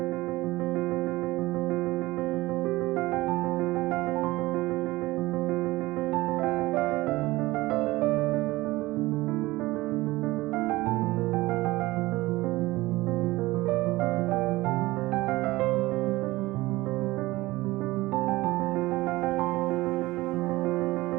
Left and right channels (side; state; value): left; quieter; 19.5 dB